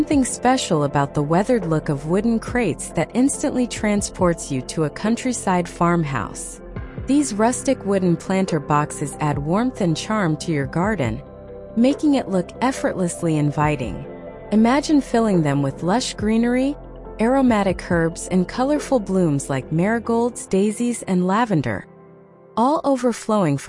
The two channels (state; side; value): identical; both; correlation 1.00